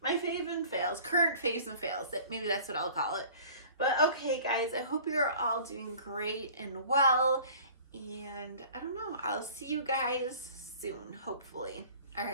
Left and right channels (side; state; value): both; inverted; correlation -0.46